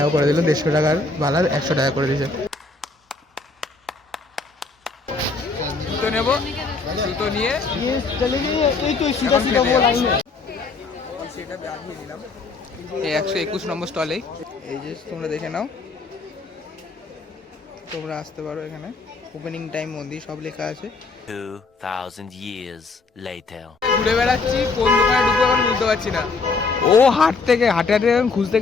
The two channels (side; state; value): right; quieter; 4.0 dB